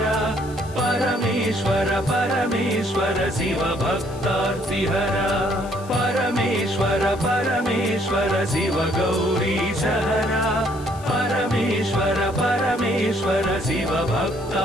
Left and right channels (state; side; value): noise; left; hiss, 21 dB below the sound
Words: परमेश्वर परमेश्वर शिव भक्तार्तिहरा परमेश्वर परमेश्वर शिव गौरी सहरा परमेश्वर परमेश्वर शिव